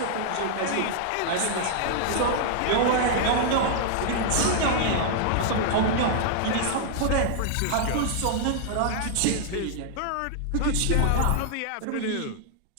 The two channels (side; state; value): both; different; correlation -0.01